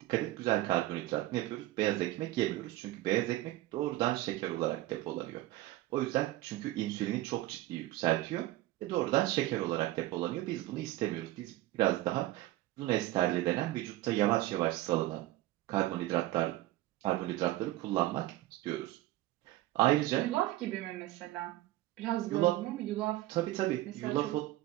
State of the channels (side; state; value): left; quieter; 16.6 dB